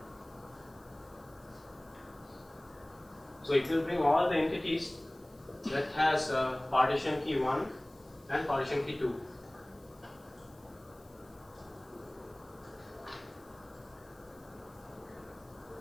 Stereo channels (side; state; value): left; noise; hiss, 29 dB below the sound